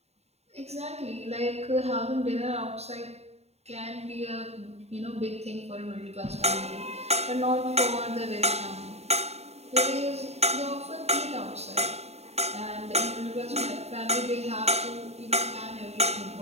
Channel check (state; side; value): late; left; 0.31 ms